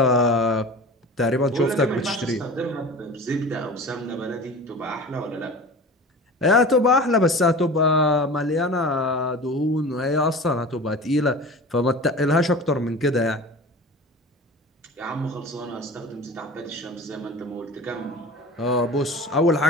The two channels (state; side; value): normal; both; correlation 0.36